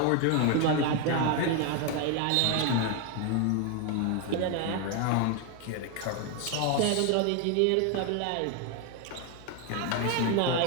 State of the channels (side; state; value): both; different; correlation 0.01